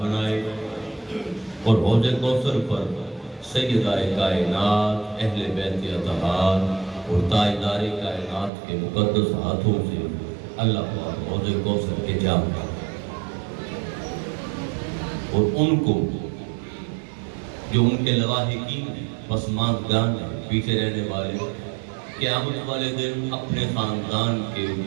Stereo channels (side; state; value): left; drops out; at 8.5 s